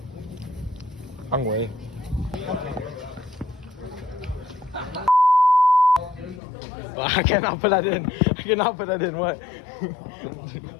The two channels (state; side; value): drops out; right; at 6.4 s